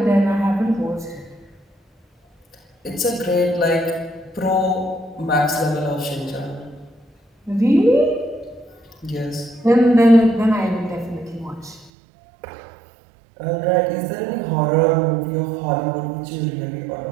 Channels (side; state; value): left; drops out; at 11.9 s